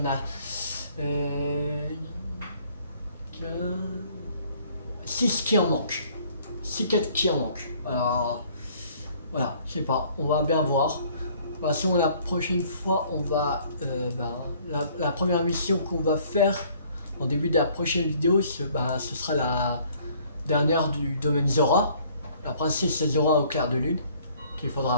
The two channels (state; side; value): inverted; both; correlation -0.58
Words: a 6 qui en manquent. 6 4 qui en manquent. Alors, voilà, je sais pas. On va bien voir. De toute façon, la prochaine fois, on va la première mission qu'on va faire en début de la prochaine vidéo, ce sera dernière du domaine Zora. Après c'est Zora au clair de lune qu'il